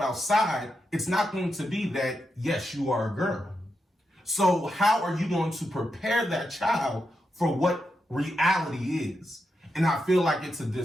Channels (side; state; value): both; normal; correlation 0.86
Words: it's not going to be that, yes, you are a girl. So how are you going to prepare that child for what reality is? And I feel like it's a